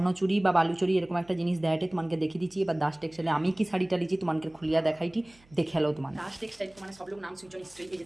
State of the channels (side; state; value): right; noise; hum, 29 dB below the sound